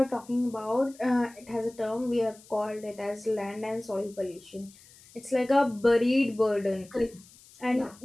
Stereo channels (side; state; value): left; noise; hiss, 24 dB below the sound